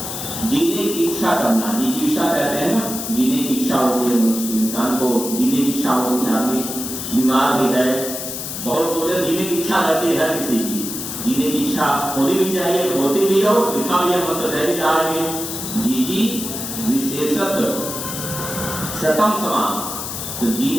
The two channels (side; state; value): left; noise; hiss, 6 dB below the sound